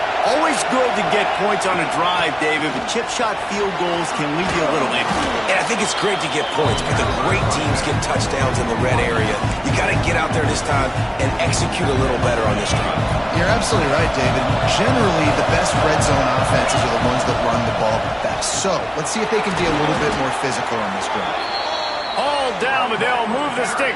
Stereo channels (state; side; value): identical; both; correlation 1.00